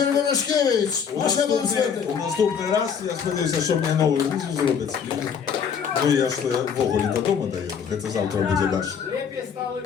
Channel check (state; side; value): quieter; right; 7.1 dB